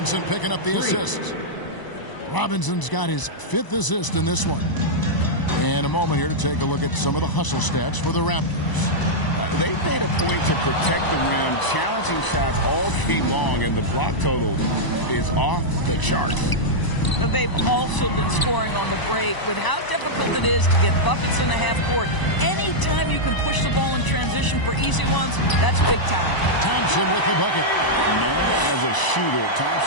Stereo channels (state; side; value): late; right; 1.0 ms